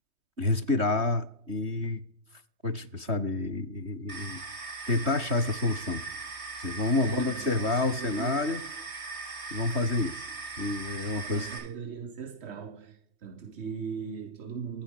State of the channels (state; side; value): late; left; 3.2 ms